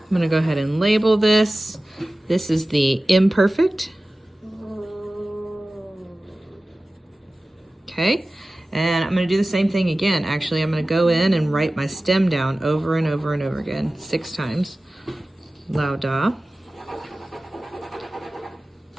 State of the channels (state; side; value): normal; both; correlation 0.96